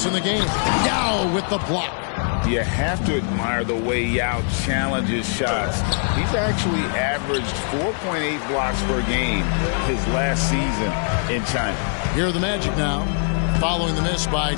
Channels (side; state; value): right; silent; 64 dB below the other